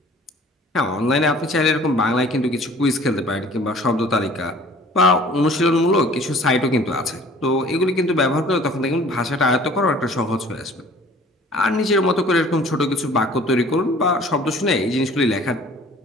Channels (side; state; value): both; normal; correlation 0.50